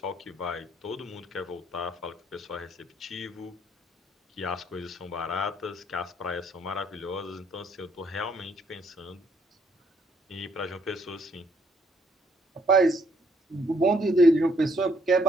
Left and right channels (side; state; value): both; normal; correlation 0.68